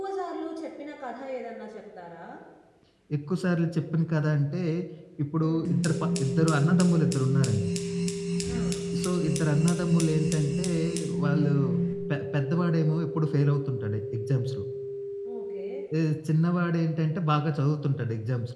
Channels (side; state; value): both; identical; correlation 1.00